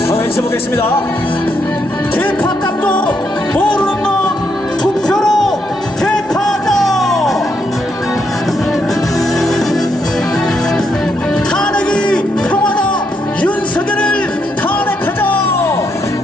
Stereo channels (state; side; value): normal; both; correlation 0.77